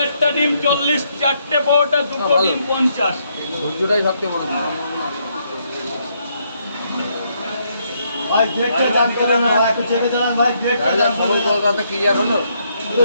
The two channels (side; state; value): both; inverted; correlation -0.74